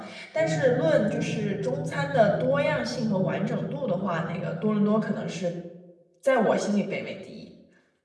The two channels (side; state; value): both; identical; correlation 1.00